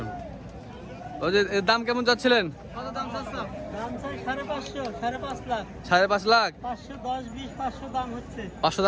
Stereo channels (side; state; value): both; identical; correlation 1.00